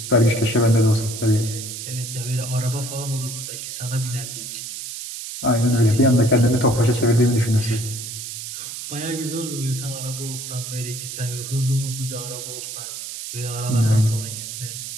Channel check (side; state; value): right; noise; hiss, 8 dB below the sound